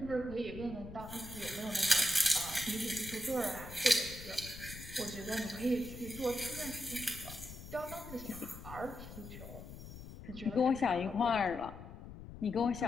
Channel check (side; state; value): left; noise; rumble, 13 dB below the sound